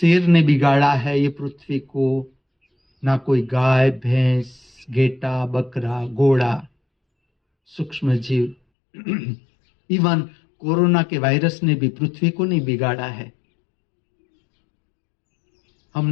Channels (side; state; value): right; drops out; at 8.6 s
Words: ने बिगाड़ा है ये पृथ्वी को, ना कोई गाय, भैंस, गेटा, बकरा, घोड़ा, सूक्ष्म जीव। इवन कोरोना के वायरस ने भी पृथ्वी को नहीं बिगाड़ा है।